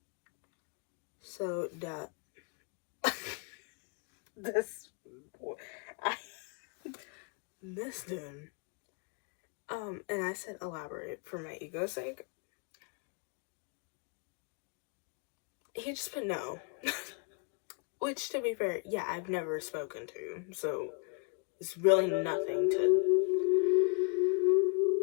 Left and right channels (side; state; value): right; quieter; 38.3 dB